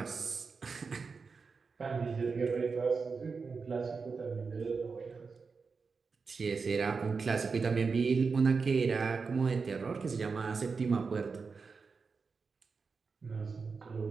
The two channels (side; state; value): left; quieter; 4.9 dB